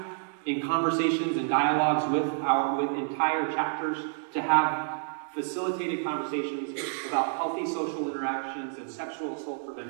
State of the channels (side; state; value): left; silent; digital silence